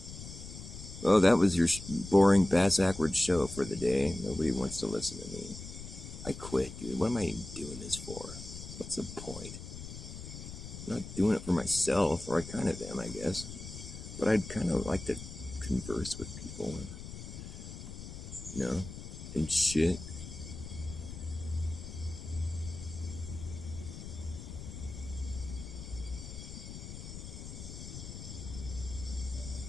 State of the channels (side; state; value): left; noise; rumble, 10 dB below the sound